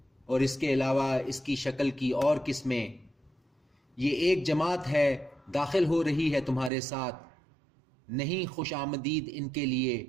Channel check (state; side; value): drops out; left; at 6.7 s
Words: اور اس کے علاوہ اس کی شکل کی اور قسمیں۔ یہ ایک جماعت ہے داخل ہو رہی ہے تمہارے ساتھ، نہیں خوش آمدید ان کے لیے،